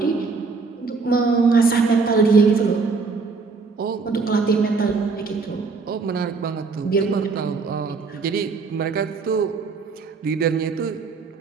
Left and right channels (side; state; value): left; quieter; 4.5 dB